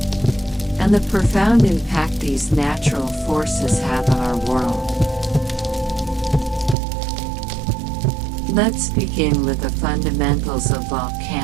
and the profound impact these natural forces have on our world. Let's begin with the fundamentals of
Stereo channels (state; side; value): drops out; left; at 6.8 s